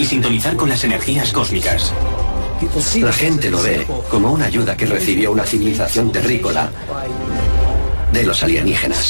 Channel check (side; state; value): both; inverted; correlation -1.00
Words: sintonizar con las energías cósmicas. La gente lo ve como una ayuda que recibió una civilización terrícola de los